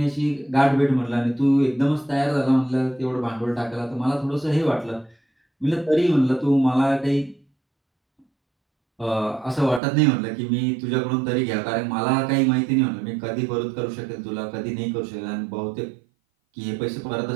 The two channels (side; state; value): left; drops out; at 9.8 s